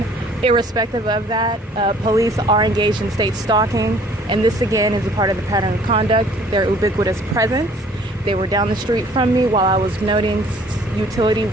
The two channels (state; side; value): normal; both; correlation 0.55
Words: Irrespective of that, police are engaged in state stalking, and this again is a part of the pattern of conduct, their ubiquitous presence. They were down the street from me while I was noting utility